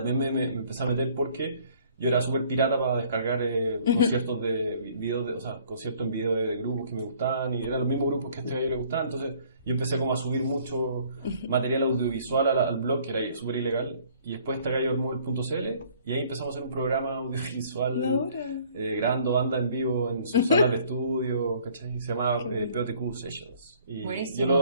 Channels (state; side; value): inverted; both; correlation -0.58